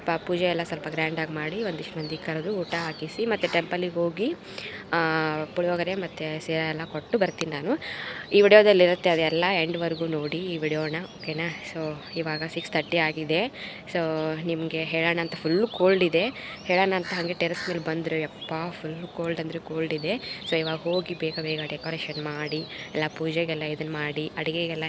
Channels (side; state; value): both; identical; correlation 1.00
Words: ಪೂಜೆ ಎಲ್ಲ ಸ್ವಲ್ಪ ಗ್ರ್ಯಾಂಡಾಗಿ ಮಾಡಿ ಒಂದಿಷ್ಟು ಮಂದಿ ಕರೆದು ಊಟ ಹಾಕಿಸಿ ಮತ್ತು ಟೆಂಪಲಿಗೆ ಹೋಗಿ ಪುಳಿಯೋಗರೆ ಮತ್ತು ಸೀರೆ ಎಲ್ಲ ಕೊಟ್ಟು ಬರ್ತೀನಿ ನಾನು. ಈ ವಿಡಿಯೋದಲ್ಲಿರುತ್ತೆ, ಅದೆಲ್ಲ ಎಂಡ್ವರೆಗೂ ನೋಡಿ ಈ ವಿಡಿಯೋನ, ಓಕೆನಾ? ಸೊ ಇವಾಗ 6:30 ಆಗಿದೆ. ಸೊ ನಿಮಗೆ ಹೇಳೋಣ ಅಂತ ಫುಲ್ಲು ಕೋಲ್ಡ್ ಇದೆ. ಹೇಳೋಣ ಅಂತ ಹಾಗೆ ಟೆರೆಸ್ ಮೇಲೆ ಬಂದರೆ ಯಪ್ಪ ಫುಲ್ಲು ಕೋಲ್ಡ್ ಅಂದರೆ ಕೋಲ್ಡ್ ಇದೆ. ಸೊ ಇವಾಗ ಹೋಗಿ ಬೇಗ ಬೇಗ ಡೆಕೋರೇಷನ್ ಮಾಡಿ ಎಲ್ಲ ಪೂಜೆಗೆಲ್ಲ ಇದನ್ನು ಮಾಡಿ ಅಡುಗೆಗೆಲ್ಲ